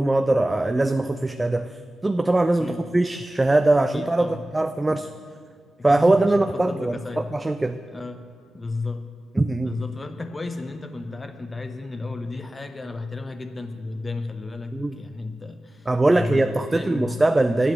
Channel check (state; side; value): normal; both; correlation 0.96